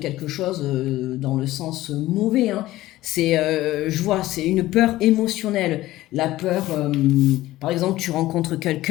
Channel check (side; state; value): right; quieter; 16.3 dB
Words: chose dans le sens mauvais, hein. Je vois, c'est une peur émotionnelle. La peur, par exemple, tu rencontres